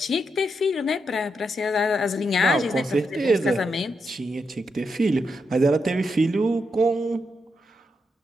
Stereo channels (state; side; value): normal; both; correlation 0.83